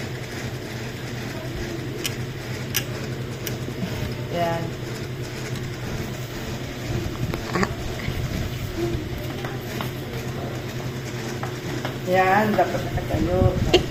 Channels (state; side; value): identical; both; correlation 1.00